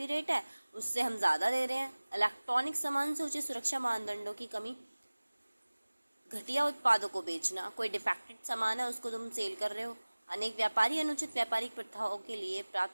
रेट है उससे हम ज़्यादा दे रहे हैं. इलेक्ट्रॉनिक सामान से उचित सुरक्षा मानदंडों की कमी, घटिया उत्पादों को बेचना. कोई डिफेक्टेड सामान है उसको तुम सेल कर रहे हो. अनेक व्यापारी अनुचित व्यापारिक प्रथाओं के लिए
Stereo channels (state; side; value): inverted; both; correlation -1.00